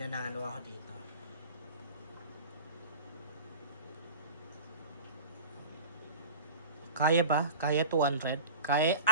ako dito. Kaya ba? Kaya 200? Kaya,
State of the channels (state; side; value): inverted; both; correlation -0.37